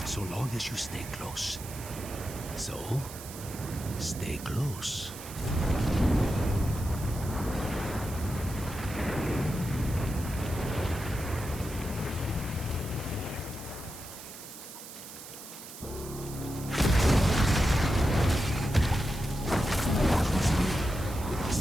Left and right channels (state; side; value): noise; right; hiss, 13 dB below the sound